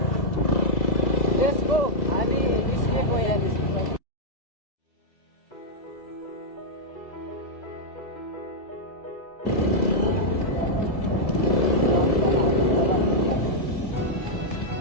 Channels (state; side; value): late; right; 2.0 ms